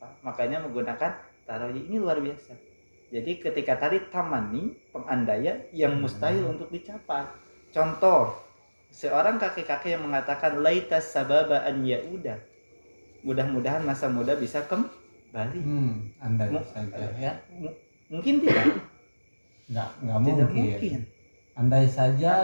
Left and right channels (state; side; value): inverted; both; correlation -1.00